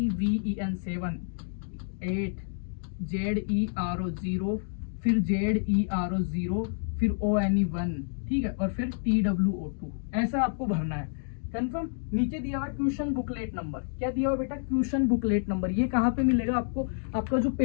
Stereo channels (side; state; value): right; silent; digital silence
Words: 7, 8 ZERO 0, फिर ZERO 0, फिर ONE 1, ठीक है, और फिर TWO 2, ऐसा आपको भरना है। कंफर्म। नीचे दिया हुआ ट्यूशन बुकलेट नंबर, क्या दिया हुआ बेटा, ट्यूशन बुकलेट नंबर। ये कहाँ पे मिलेगा आपको, आपका जो